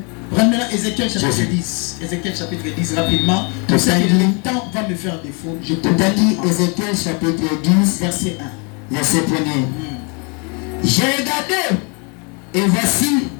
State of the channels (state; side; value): quieter; right; 34.1 dB